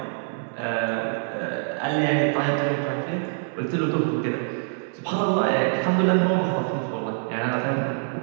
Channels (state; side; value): silent; left; 62 dB below the other